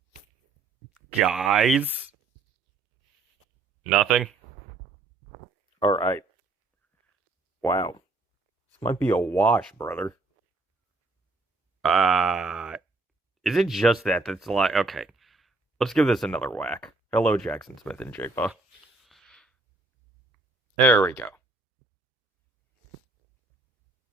guys. Nothing. All right. Wow. This might be a wash, brother. Uh, is it just that that's like okay? Let's give this another whack. Hello, Jackson Smith and Jigba. There we go.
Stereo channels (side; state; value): left; quieter; 3.6 dB